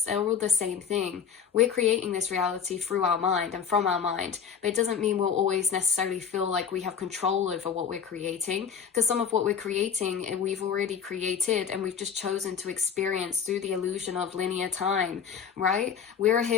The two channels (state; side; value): quieter; right; 7.1 dB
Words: they're all the same thing. We're creating this reality through our mind and from our mind, but it doesn't mean we'll always necessarily feel like we have control over what we're creating, because some of what we're creating we've already created and we've just chosen to experience through the illusion of linear time, right? We're